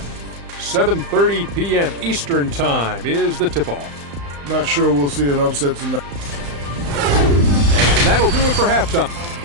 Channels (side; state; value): left; late; 35 ms